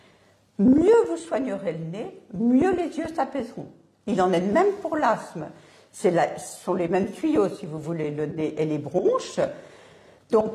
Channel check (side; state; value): both; identical; correlation 1.00